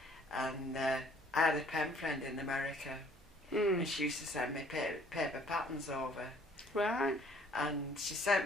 and I had a pen friend in America, and she used to send me paper patterns over. Right. And she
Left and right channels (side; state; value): both; normal; correlation 0.59